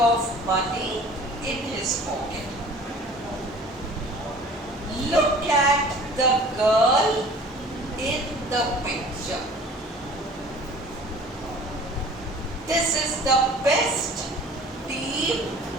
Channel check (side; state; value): both; normal; correlation 0.47